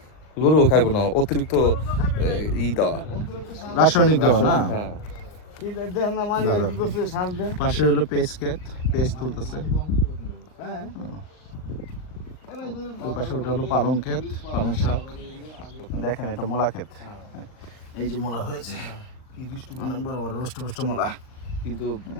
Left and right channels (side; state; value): right; late; 39 ms